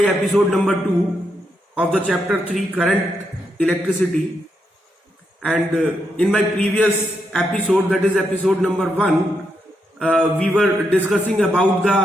number 2 of the chapter 3, current electricity, and in my previous episode, that is episode number 1, we were discussing about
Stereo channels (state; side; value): normal; both; correlation 0.81